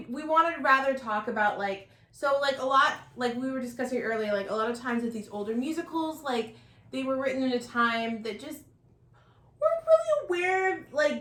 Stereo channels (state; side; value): identical; both; correlation 1.00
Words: wanted to rather talk about, like, so, like, a lot, like, we were discussing earlier, like, a lot of times with these older musicals, like, they were written in a time that just weren't really aware of,